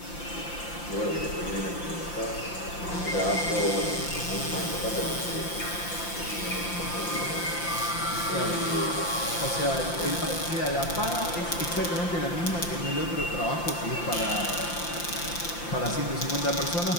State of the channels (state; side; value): late; right; 5.8 ms